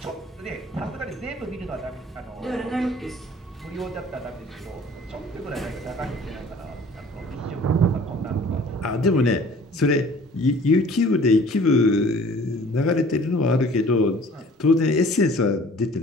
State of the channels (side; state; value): both; normal; correlation 0.50